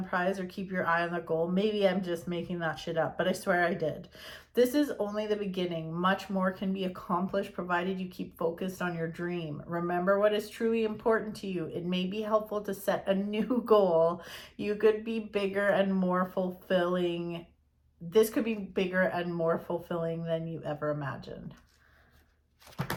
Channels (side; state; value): both; identical; correlation 1.00